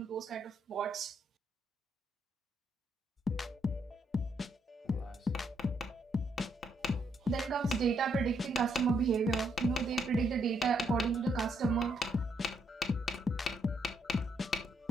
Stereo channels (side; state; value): both; normal; correlation 0.75